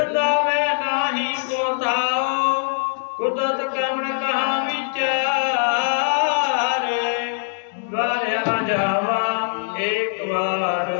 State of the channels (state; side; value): silent; right; digital silence